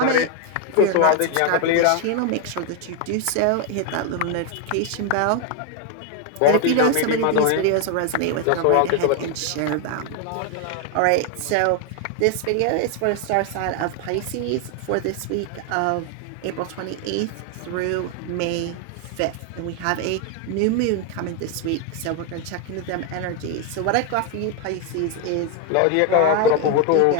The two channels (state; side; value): different; both; correlation 0.01